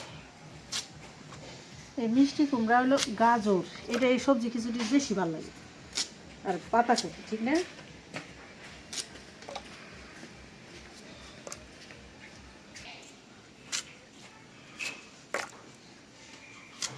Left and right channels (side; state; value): both; identical; correlation 1.00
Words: এই মিষ্টি কুমড়া হলো গাজর, এটা এই সবজি খিচুড়ির বেশি ভালো লাগে, আর পাতাকপি, ঠিক না?